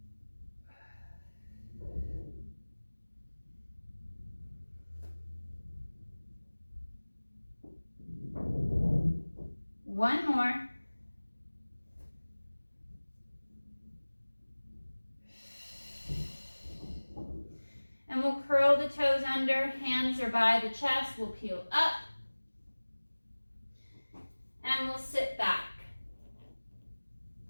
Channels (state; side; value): inverted; both; correlation -1.00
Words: One more. And we'll curl the toes under, hands are by the chest, we'll peel up, and we'll sit back.